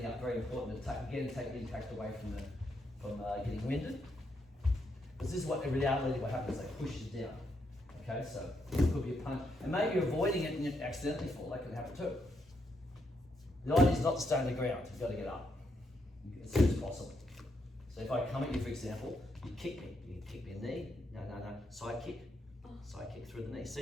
out. Very important to take the impact away from getting winded. Because this is what in reality what happens. They push you down. Okay, so it could be a punch, and maybe you're avoiding it and you accidentally fall. That can happen too. The idea is not to stay on the ground. You've got to get up as soon as possible. So if I come at you, for example, you kick me. You kick me in the knee. No. Side kick. Side kick through the knee.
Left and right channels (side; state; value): both; normal; correlation 0.78